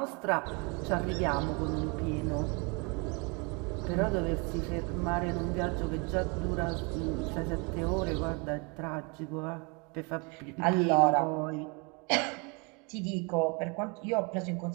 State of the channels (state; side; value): quieter; left; 31.5 dB